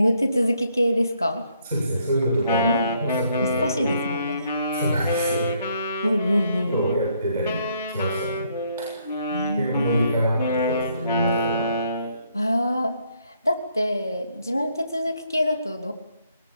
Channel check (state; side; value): inverted; both; correlation -0.70